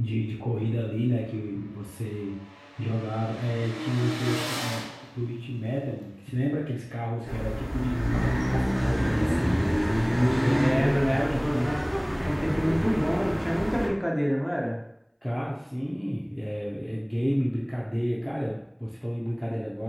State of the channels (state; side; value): identical; both; correlation 1.00